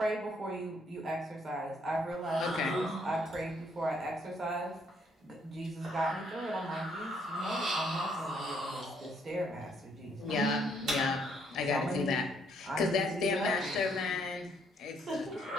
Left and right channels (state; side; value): normal; both; correlation 0.69